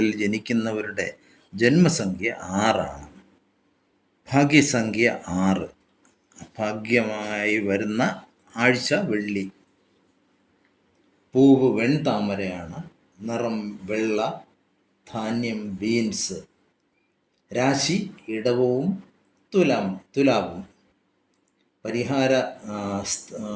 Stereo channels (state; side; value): identical; both; correlation 1.00